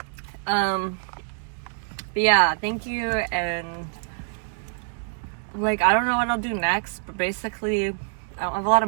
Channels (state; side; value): silent; left; 61 dB below the other